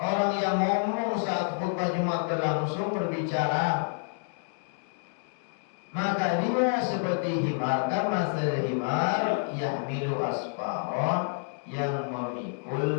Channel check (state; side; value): silent; right; digital silence